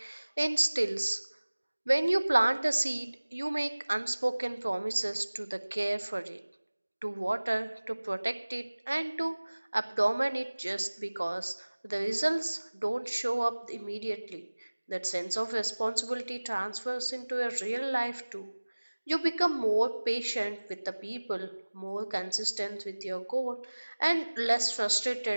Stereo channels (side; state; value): both; inverted; correlation -1.00